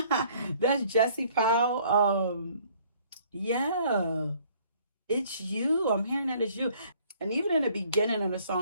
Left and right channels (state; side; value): inverted; both; correlation -0.58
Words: That's Jesse Powell. Yeah, it's you. I'm hearing that it's you. And even in the beginning of the